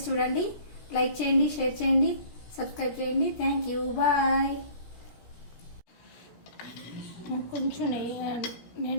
చూడండి. లైక్ చేయండి, షేర్ చేయండి, సబ్స్క్రైబ్ చేయండి. Thank you, bye. కొంచెం నెయ్యి,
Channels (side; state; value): right; late; 17 ms